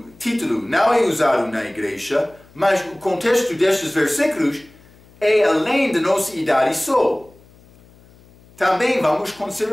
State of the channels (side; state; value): left; noise; hum, 27 dB below the sound